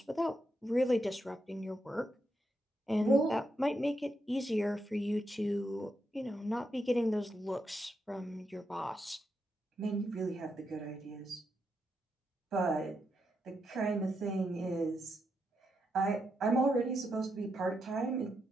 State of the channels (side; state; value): both; normal; correlation 0.83